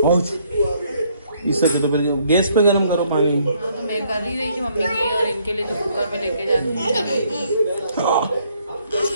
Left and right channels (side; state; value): both; inverted; correlation -0.67